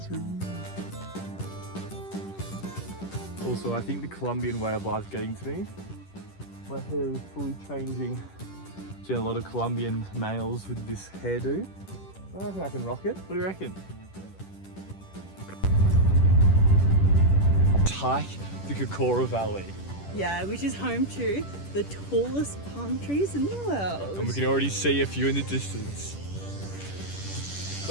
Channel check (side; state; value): right; late; 10 ms